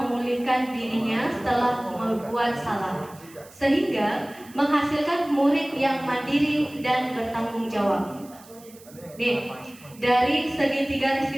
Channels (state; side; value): noise; right; hiss, 23 dB below the sound